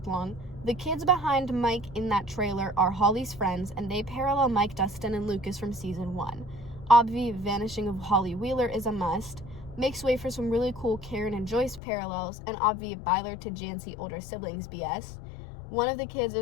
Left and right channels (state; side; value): drops out; right; at 11.8 s